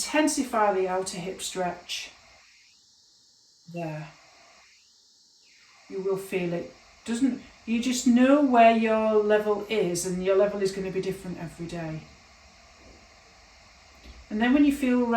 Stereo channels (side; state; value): both; identical; correlation 1.00